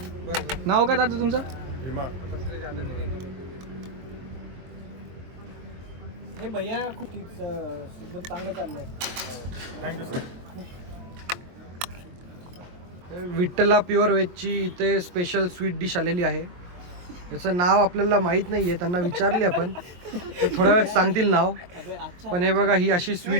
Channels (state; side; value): late; left; 23 ms